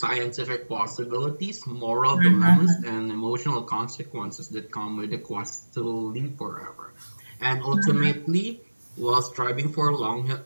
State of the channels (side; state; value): both; inverted; correlation -1.00